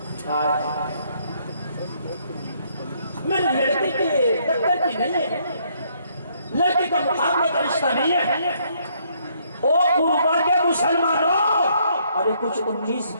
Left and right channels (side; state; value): both; inverted; correlation -0.69